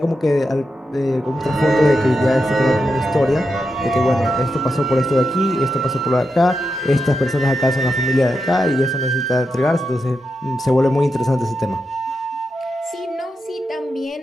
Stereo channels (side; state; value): both; normal; correlation 0.87